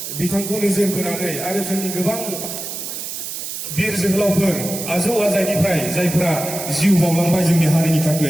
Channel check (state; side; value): noise; right; hiss, 7 dB below the sound